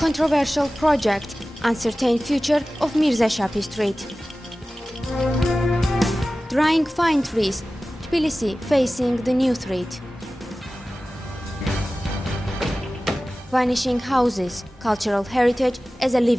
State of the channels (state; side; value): normal; both; correlation 0.96